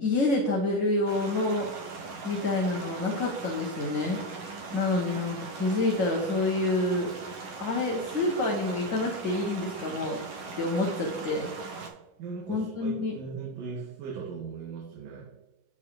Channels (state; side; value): late; left; 11 ms